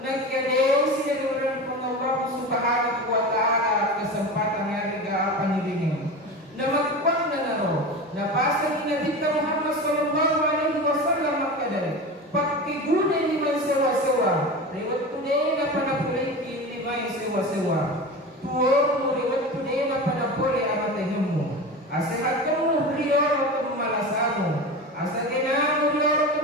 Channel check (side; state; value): both; normal; correlation 0.28